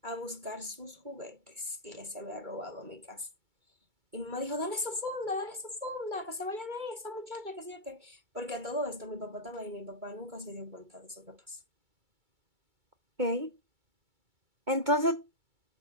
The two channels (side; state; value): left; late; 2.2 ms